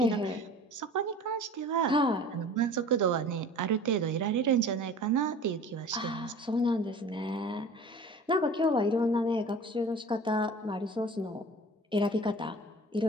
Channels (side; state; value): both; normal; correlation 0.42